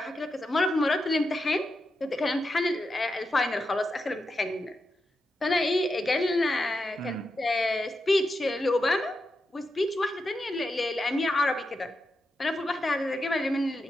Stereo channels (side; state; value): both; normal; correlation 0.87